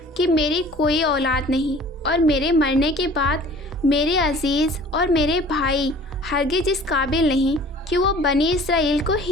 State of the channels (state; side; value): normal; both; correlation 0.48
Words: کہ میری کوئی اولاد نہیں اور میرے مرنے کے بعد میرے عزیز اور میرے بھائی ہرگز اس قابل نہیں کہ وہ بنی اسرائیل کو